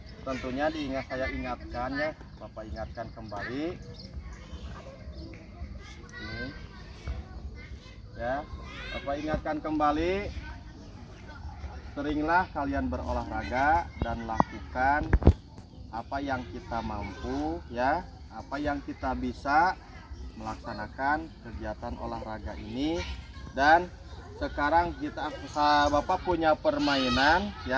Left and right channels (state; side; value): identical; both; correlation 1.00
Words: tentunya saya ingatkan ya, Bapak ingatkan kembali. Ini. Ya, Bapak ingatkan kembali, seringlah kalian berolahraga dan lakukan apa yang kita mampu ya, apa yang kita bisa melaksanakan kegiatan olahraga ini. Dan sekarang Bapak punya permainan